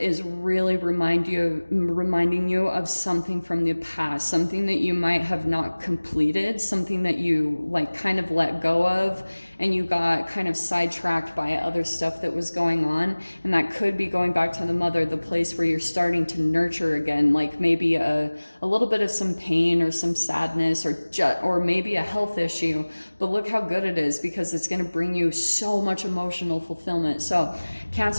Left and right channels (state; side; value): inverted; both; correlation -1.00